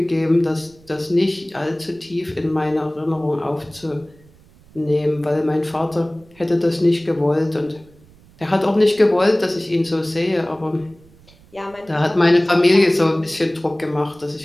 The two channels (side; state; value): right; noise; rumble, 27 dB below the sound